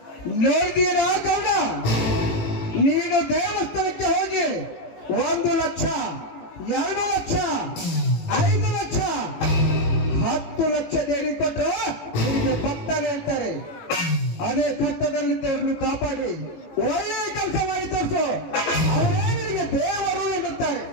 ನೋಡಿದೀರಾ ಗೌಡ, ನೀನು ದೇವಸ್ಥಾನಕ್ಕೆ ಹೋಗಿ 1 ಲಕ್ಷ, 2 ಲಕ್ಷ, 5 ಲಕ್ಷ, 10 ಲಕ್ಷ ದೇಡಿ ಕೊಟ್ಟರು ನಿಮಗೆ ಭಕ್ತನೇ ಹೇಳ್ತಾರೆ. ಅದೇ ಕಷ್ಟದಲ್ಲಿದ್ದವ್ರನ್ನು ಕಾಪಾಡಿ ಒಳ್ಳೆಯ ಕೆಲಸ ಮಾಡಿ ತೋರಿಸು, ಅವರೇ ನಿನಗೆ ದೇವರು ಎನ್ನುತ್ತಾರೆ.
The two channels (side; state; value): right; late; 18 ms